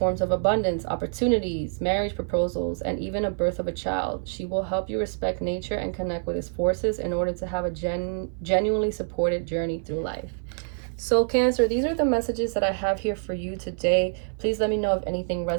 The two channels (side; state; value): left; silent; 61 dB below the other